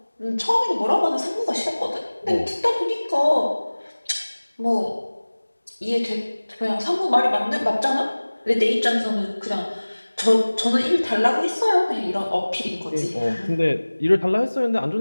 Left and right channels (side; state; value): both; inverted; correlation -1.00